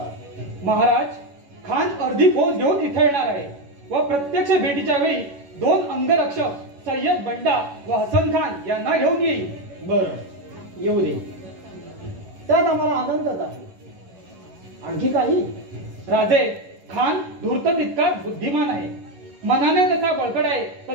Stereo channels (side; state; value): left; late; 11 ms